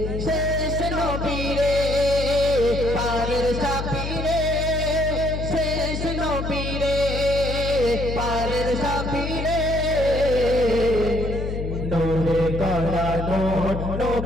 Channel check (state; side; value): noise; left; hum, 4 dB below the sound